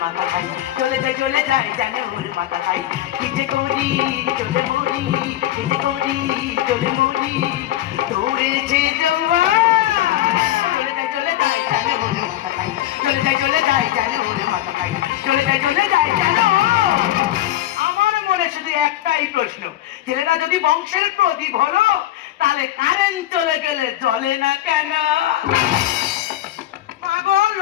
মাথা খাই, চলে যায় জানে ওর মাথা খাই। কি যে করি চলে মরি, কি যে করি চলে মরি, দৌড়েছে জওয়ান, চলে যায় জানে ওর মাথা খাই, চলে যায় জানে ওর মাথা খাই, চলে যায় জানো। আমার মনে শুধু একটাই প্রশ্ন, ছেলেরা যদি বংশের প্রদীপ হলো, তাহলে কারেন্ট চলে গেলে জ্বলে না কেন? মাগো,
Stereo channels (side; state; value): right; quieter; 13.6 dB